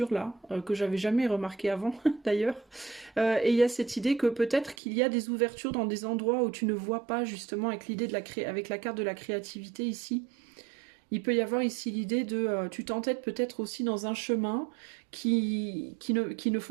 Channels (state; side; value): drops out; left; at 4.8 s